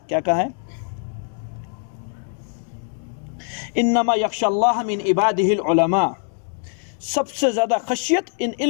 کیا کہا ہے؟ انما یخشی اللہ من عبادہ العلماء. سب سے زیادہ خشیت ان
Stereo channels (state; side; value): silent; right; 59 dB below the other